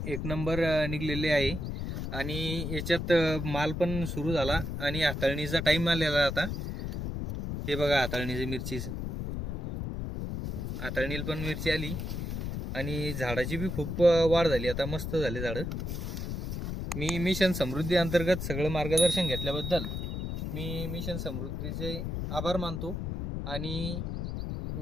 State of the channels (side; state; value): left; noise; rumble, 4 dB below the sound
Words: एक नंबर निघलेले आहे आणि याच्यात माल पण सुरू झाला आणि हाताळणीचा टाईम आलेला आता. हे बघा हाताळणीची मिरचीच, हाताळणीला पण मिरची आली आणि झाडाची बी खूप वाढ झाली, आता मस्त झाले झाडं. मी मिशन समृद्धी अंतर्गत सगळं मार्गदर्शन घेतल्याबद्दल मी मिशन समृद्धीचे आभार मानतो आणि